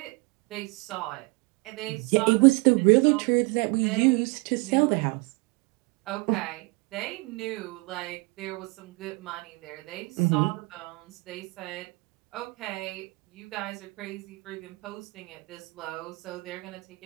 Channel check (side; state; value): left; quieter; 27.0 dB